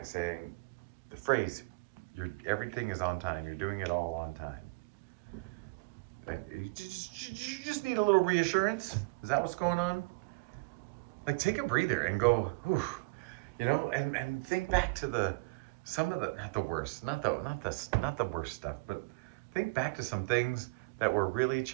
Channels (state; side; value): quieter; left; 28.0 dB